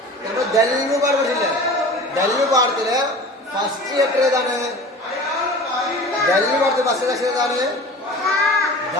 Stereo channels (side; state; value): both; normal; correlation 0.39